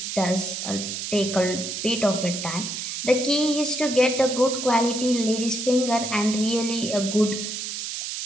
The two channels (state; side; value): noise; right; hiss, 5 dB below the sound